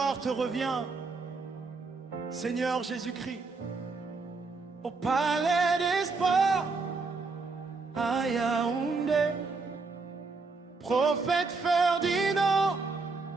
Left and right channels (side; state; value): left; quieter; 4.1 dB